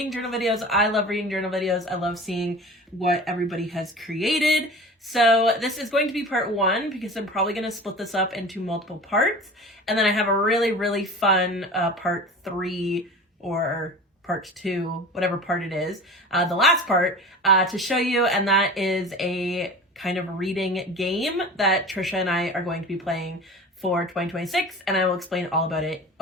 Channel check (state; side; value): normal; both; correlation 0.36